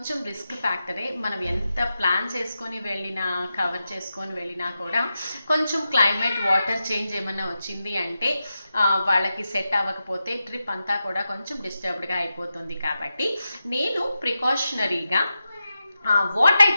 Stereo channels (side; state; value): both; inverted; correlation -0.90